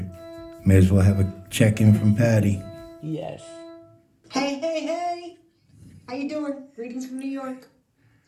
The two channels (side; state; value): both; identical; correlation 1.00